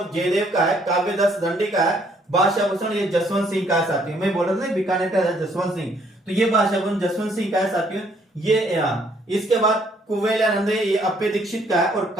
जयदेव का है, काव्य दस दंडी का है, भाषा भूषण ये जसवंत सिंह का है साथियों। मैं बोल रहा था बीकानेर का जसवंत सिंह, तो ये भाषा भूषण जसवंत सिंह का है साथियों। ये इसके बाद कुवलयानंद ये अप्पे दीक्षित का है। और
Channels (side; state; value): both; normal; correlation 0.66